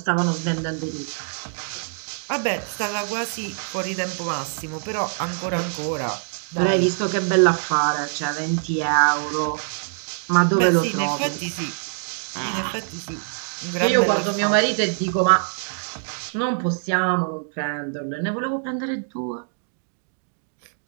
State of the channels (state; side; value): silent; left; digital silence